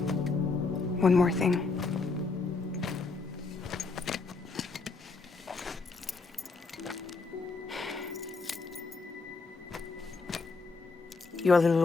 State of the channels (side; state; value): right; quieter; 4.1 dB